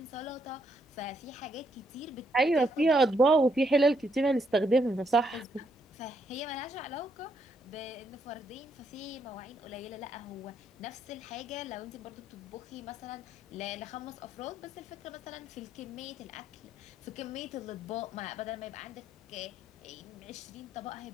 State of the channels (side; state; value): both; normal; correlation 0.75